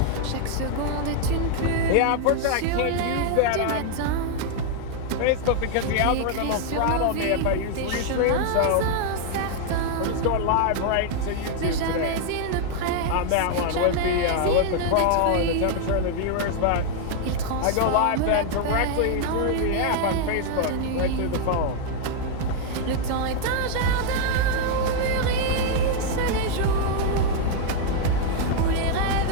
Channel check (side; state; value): both; different; correlation 0.00